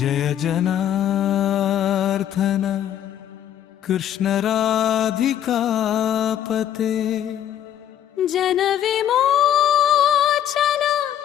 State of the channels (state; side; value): quieter; right; 10.6 dB